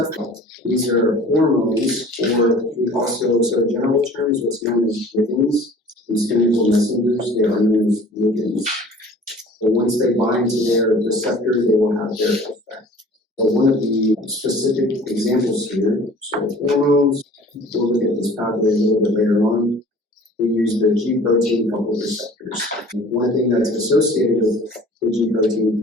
These are hormones, or we also, so in general terms, what's known as ligands. These chemical messengers, they are known as ligands. But once they bind to their receptor, they will have their effect. But one of the specific examples here, so hormones, we'll look at this pathway a little bit later on. We use the G protein coupled receptors. One thing that's associated with the G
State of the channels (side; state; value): both; normal; correlation 0.47